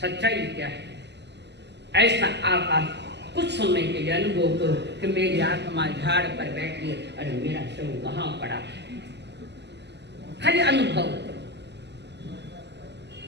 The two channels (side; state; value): left; late; 0.50 ms